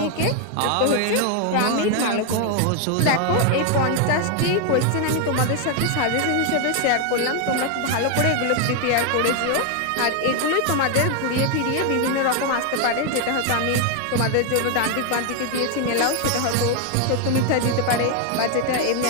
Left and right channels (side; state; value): both; different; correlation 0.00